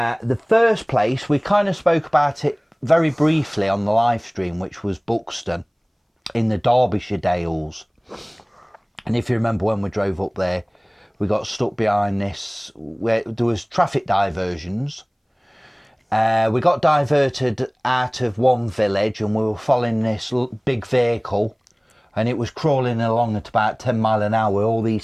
first place, we kind of spoke about it very briefly on the live stream, which was Buxton in the Derbyshire Dales. And if you remember when we drove up there, we got stuck behind this, where there was traffic diversions. We got diverted out of one village and we were following this big vehicle and it was crawling along at about 10 mile an hour with all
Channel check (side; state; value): both; identical; correlation 1.00